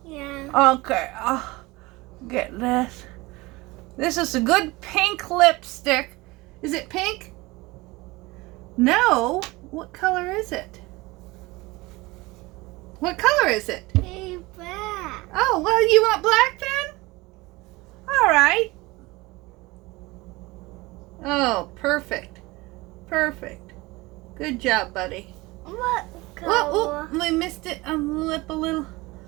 Yeah. Okay. I'll get this. This is a good pink lipstick. Is it pink? No. What color is it? What color is it? Hey, black. Oh, well, you want black then? All right. Oh, perfect. Perfect. Good job, buddy. What color? Oh, we missed it on the lip a little.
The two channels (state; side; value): quieter; left; 22.0 dB